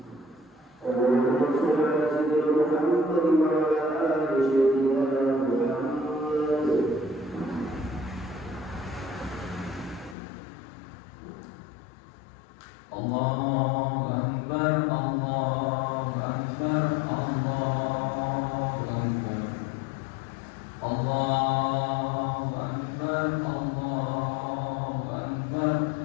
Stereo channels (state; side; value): drops out; right; at 10.2 s